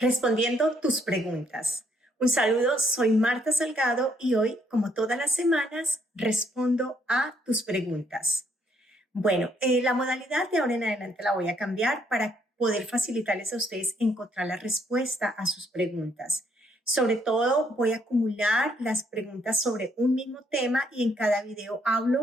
respondiendo tus preguntas. Un saludo, soy Marta Salgado y hoy, como todas las semanas, respondo a tus preguntas. Bueno, la modalidad de ahora en adelante la voy a cambiar para poder facilitarles a ustedes encontrar la respuesta a sus preguntas. Sobre todo, voy a acumular las preguntas sobre un mismo tema y en cada video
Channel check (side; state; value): both; normal; correlation 0.70